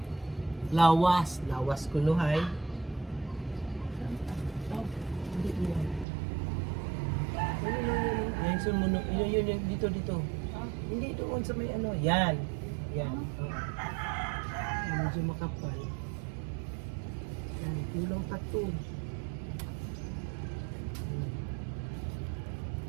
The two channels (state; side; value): drops out; left; at 6.1 s